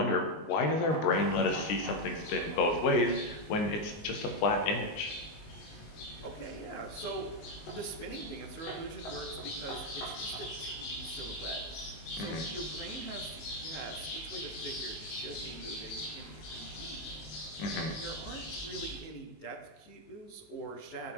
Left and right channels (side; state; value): right; late; 19 ms